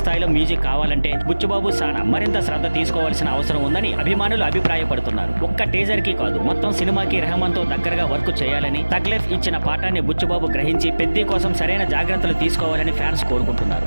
స్థాయిలో మ్యూజిక్ కావాలంటే బుచ్చిబాబు సానా మరింత శ్రద్ధ తీసుకోవాల్సిన అవసరం ఉందని అభిమానులు అభిప్రాయపడుతున్నారు. ఒక్క టీజర్ కి కాదు, మొత్తం సినిమాకి రెహమాన్ తో దగ్గరగా వర్క్ చేయాలని తగ్ లైఫ్ ఇచ్చిన పాఠాన్ని బుచ్చిబాబు గ్రహించి పెద్ది కోసం సరైన జాగ్రత్తలు తీసుకోవాలని ఫ్యాన్స్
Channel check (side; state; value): both; inverted; correlation -1.00